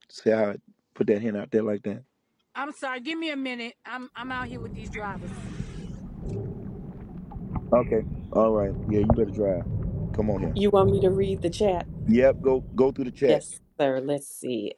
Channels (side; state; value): both; identical; correlation 1.00